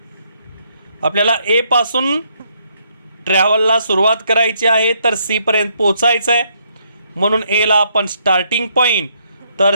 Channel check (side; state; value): both; inverted; correlation -0.72